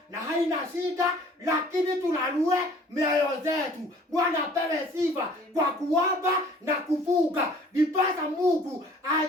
na haina shida, lakini tulalue mioyo zetu. Bwana apewe sifa kwa kuomba na kufunga. Ndiposa Mungu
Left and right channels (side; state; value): both; normal; correlation 0.52